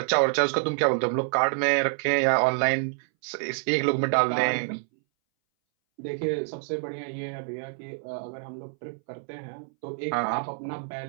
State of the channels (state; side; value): silent; left; 60 dB below the other